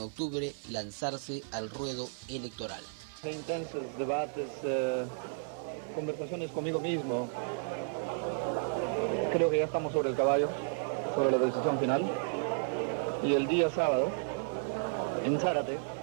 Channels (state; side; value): silent; left; digital silence